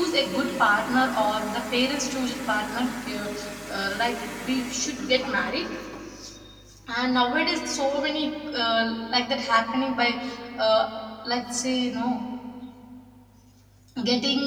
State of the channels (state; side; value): identical; both; correlation 1.00